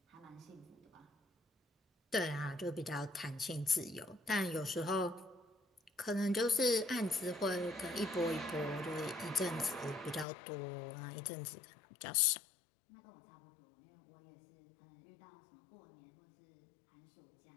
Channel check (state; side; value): drops out; right; at 10.2 s